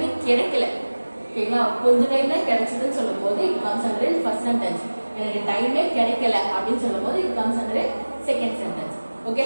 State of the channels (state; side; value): inverted; both; correlation -1.00